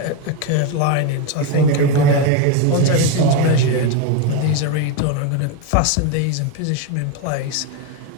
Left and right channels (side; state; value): both; different; correlation 0.03